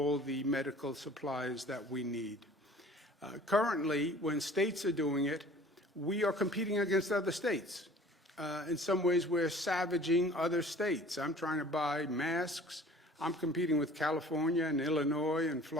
the medical supplies that we need. Currently, when states are doing it, we are competing against other states. In some ways, we're savaging other states. I'm trying to buy masks. I'm competing with California and Illinois and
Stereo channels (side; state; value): both; normal; correlation 0.48